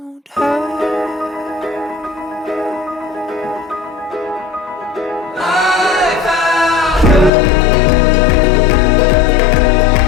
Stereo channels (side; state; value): right; drops out; at 7.3 s